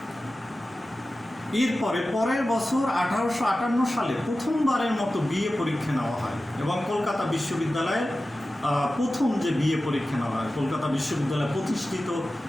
এরপরে পরের বছর 1858 সালে প্রথমবারের মতো বিএ পরীক্ষা নেওয়া হয় এবং কলকাতা বিশ্ববিদ্যালয়ের প্রথম যে বিএ পরীক্ষা নেওয়া হয় কলকাতা বিশ্ববিদ্যালয় প্রতিষ্ঠিত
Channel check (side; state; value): both; normal; correlation 0.95